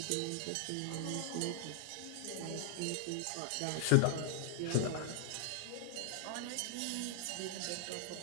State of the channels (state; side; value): different; both; correlation 0.00